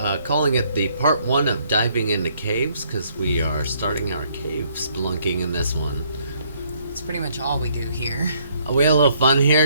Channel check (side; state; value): both; inverted; correlation -0.67